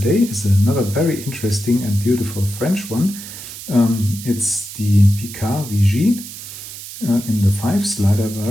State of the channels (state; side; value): noise; right; hiss, 12 dB below the sound